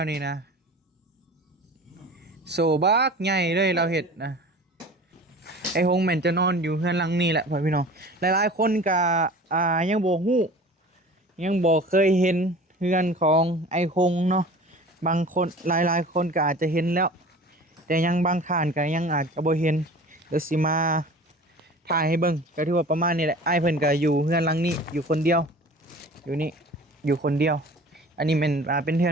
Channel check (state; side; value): normal; both; correlation 0.41